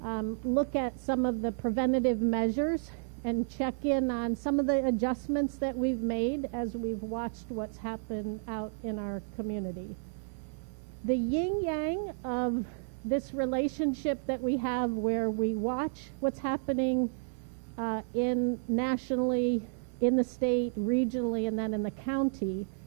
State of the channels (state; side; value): silent; left; digital silence